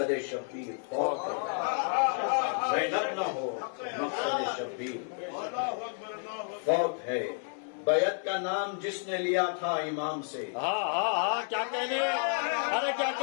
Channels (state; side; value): silent; right; 55 dB below the other